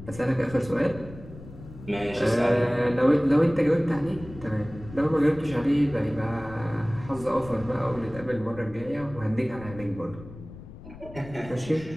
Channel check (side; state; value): left; noise; rumble, 16 dB below the sound